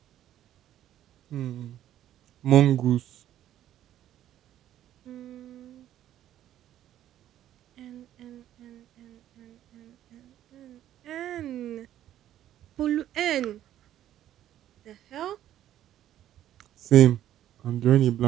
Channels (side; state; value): left; quieter; 12.1 dB